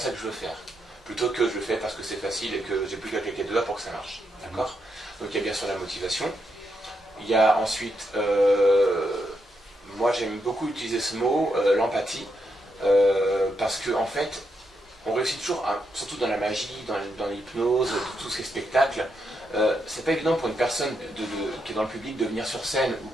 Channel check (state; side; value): normal; both; correlation 0.81